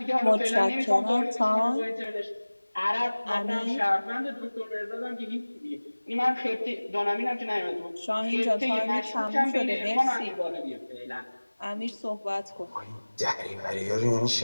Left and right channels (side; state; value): both; inverted; correlation -1.00